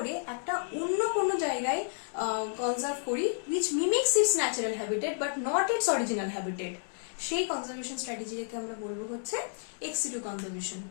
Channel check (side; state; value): right; silent; digital silence